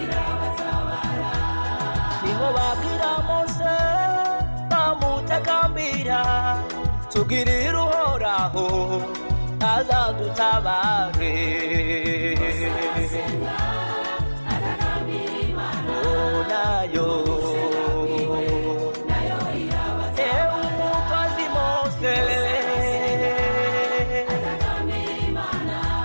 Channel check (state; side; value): inverted; both; correlation -1.00